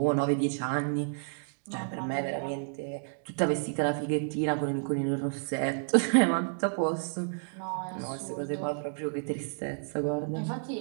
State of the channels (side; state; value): left; silent; digital silence